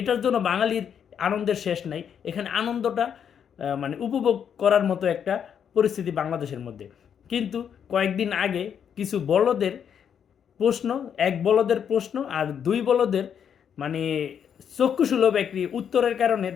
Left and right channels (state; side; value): quieter; right; 8.1 dB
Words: জন্য বাঙালির আনন্দের শেষ নাই। এখানে আনন্দটা উপভোগ করার মতো একটা পরিস্থিতি বাংলাদেশের মধ্যে। কিন্তু কয়েকদিন আগে কিছু বলদের প্রশ্ন, এক বলদের প্রশ্ন আর দুই বলদের মানে চক্ষুসুলভ একটি উত্তরের কারণে